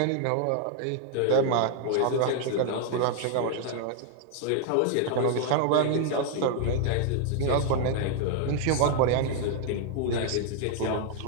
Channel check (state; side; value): different; both; correlation 0.00